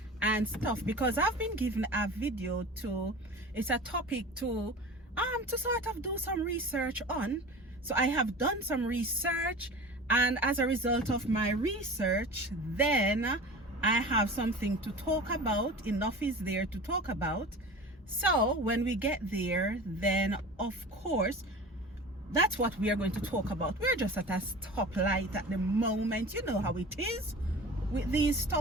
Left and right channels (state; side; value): normal; both; correlation 0.36